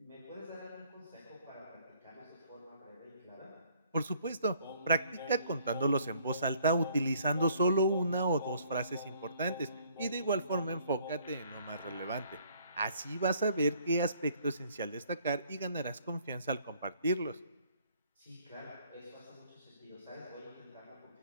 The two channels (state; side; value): inverted; both; correlation -0.62